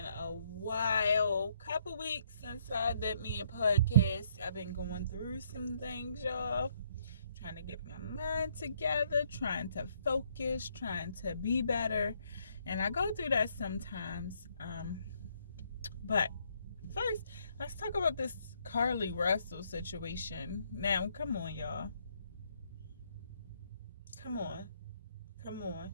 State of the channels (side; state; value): both; inverted; correlation -0.69